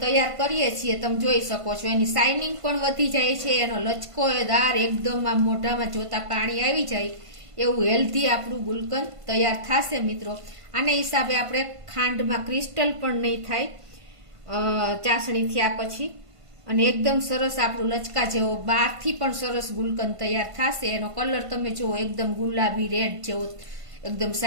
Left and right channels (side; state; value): left; late; 1.5 ms